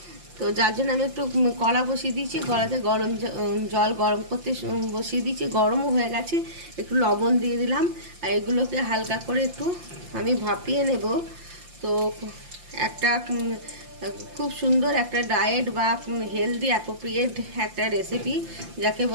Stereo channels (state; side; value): late; left; 5.8 ms